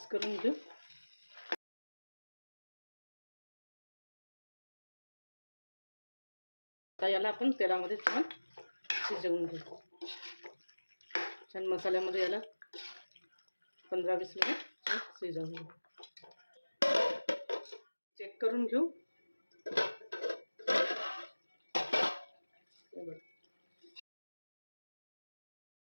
करून घेऊ. आता याला आपण तेलामध्ये छान शिजवून घेऊ. छान मसाल्यामध्ये याला 15-20 मिनिट छान शिजवून घेऊ. चेक करून घेऊ.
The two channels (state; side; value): inverted; both; correlation -1.00